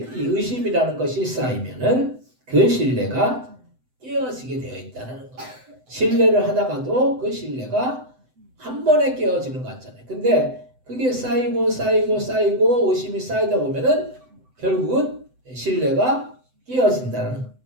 이 의심이라는 것이 쌓이면은 그 신뢰가 깨어지게 되어 있다는 거예요. 신뢰를 하다가도 그 신뢰가 한 번에 깨어지는 것 같잖아요. 근데 그게 쌓이고 의심이 쌓이다 보면은 결국은 신뢰가 깨어진다는 거예요.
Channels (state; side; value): late; left; 7.9 ms